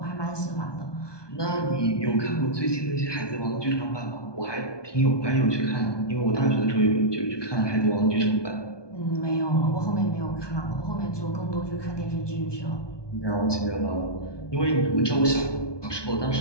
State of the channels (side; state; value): right; late; 1.2 ms